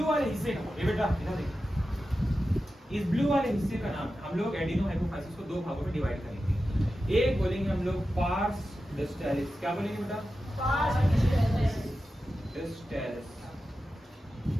वाले हिस्से का ये बेटा इधर देखिए, इस ब्लू वाले हिस्से का नाम हम लोग एडिनोहाइपोफाइसिस को दो भागों में डिवाइड करेंगे। एक बोलेंगे हम लोग पार्स डिस्टैलिस, क्या बोलेंगे बेटा? डिस्टैलिस,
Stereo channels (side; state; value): both; normal; correlation 0.92